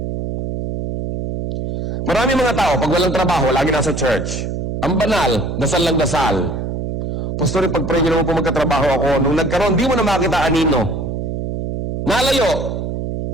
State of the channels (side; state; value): right; noise; hum, 3 dB below the sound